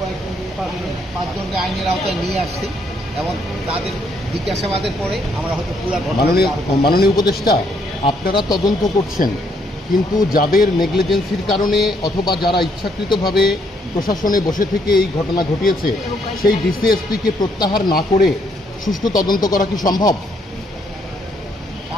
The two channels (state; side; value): normal; both; correlation 0.71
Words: পাঁচজনকে আইনের আওতায় নিয়ে আসছি এবং তাদের জিজ্ঞাসাবাদের পরে আমরা হয়তো পুরা মাননীয় উপদেষ্টা, আপনারা তদন্ত করছেন, কিন্তু যাদের নেগলিজেন্সির কারণে অথবা যারা ইচ্ছাকৃতভাবে প্রশাসনে বসে থেকে এই ঘটনা ঘটিয়েছে সেই ডিসিএসপিকে প্রত্যাহার না করে সুষ্ঠু তদন্ত করা কি সম্ভব?